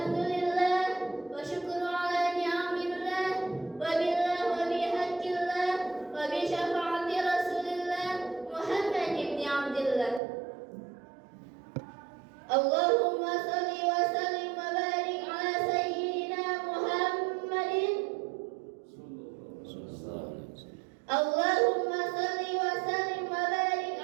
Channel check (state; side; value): drops out; left; at 10.2 s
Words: wa syukru ala ni'amillah, wa billah wa bihaqqillah, wa bi syafaati Rasulillah Muhammad ibn Abdillah. Allahumma shalli wa sallim wa barik ala sayyidina Muhammadin. Allahumma shalli wa sallim wa barik